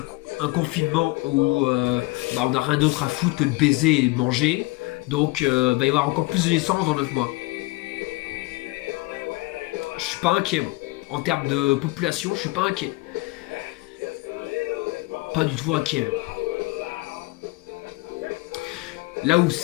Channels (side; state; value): right; quieter; 22.8 dB